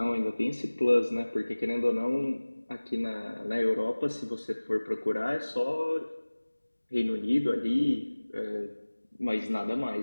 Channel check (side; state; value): both; inverted; correlation -1.00